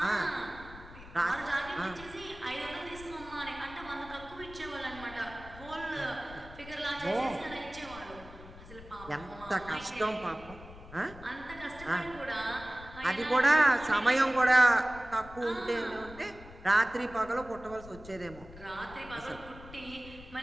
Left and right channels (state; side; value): noise; left; rumble, 17 dB below the sound